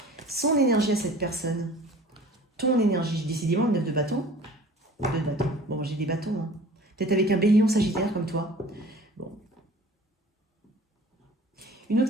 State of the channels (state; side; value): normal; both; correlation 0.45